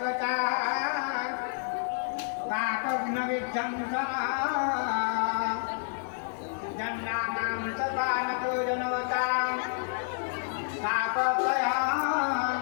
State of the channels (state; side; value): silent; right; digital silence